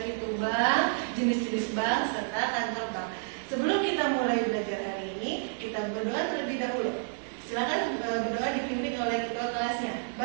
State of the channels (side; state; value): left; silent; 58 dB below the other